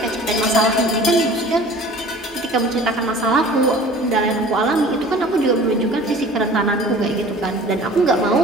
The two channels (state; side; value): normal; both; correlation 0.45